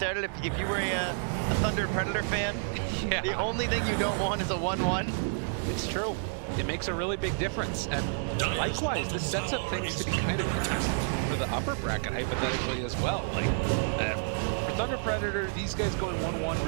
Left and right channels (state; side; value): silent; left; digital silence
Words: If you were a Thunder Predator fan, Yeah. the only thing you don't want is a 1-1. It's true. It makes a really big difference. And likewise, this sets up things to be kind of interesting for the upper bracket, hypothetically, as well. Like, for Thunder Predator, these guys going 1-1